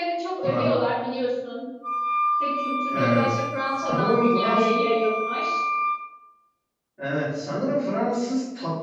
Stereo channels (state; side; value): identical; both; correlation 1.00